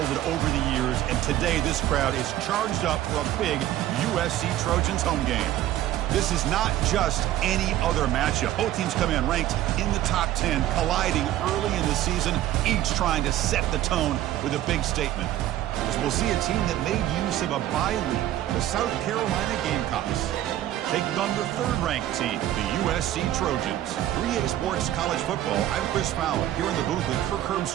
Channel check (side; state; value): left; quieter; 13.3 dB